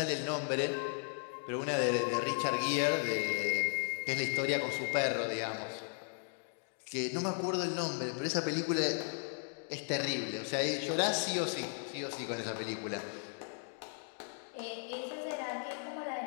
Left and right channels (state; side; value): silent; right; 54 dB below the other